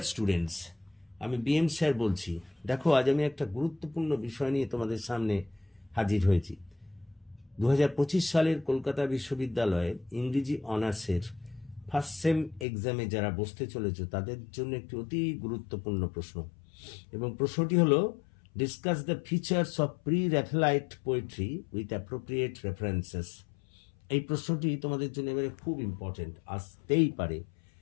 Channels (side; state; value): right; drops out; at 12.7 s